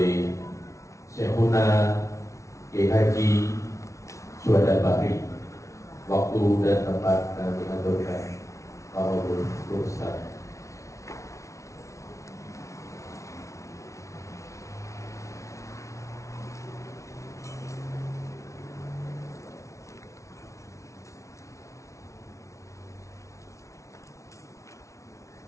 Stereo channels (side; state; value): right; late; 0.14 ms